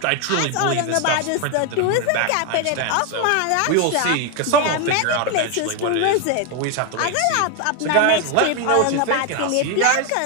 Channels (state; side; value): different; both; correlation 0.01